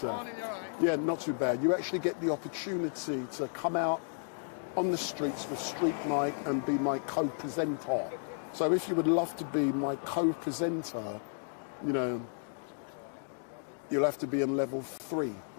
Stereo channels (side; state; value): right; silent; digital silence